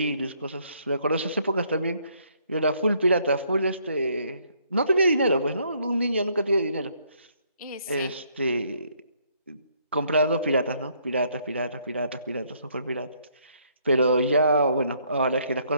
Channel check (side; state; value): both; inverted; correlation -0.68